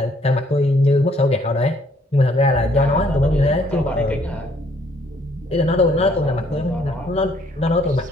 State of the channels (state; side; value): normal; both; correlation 0.65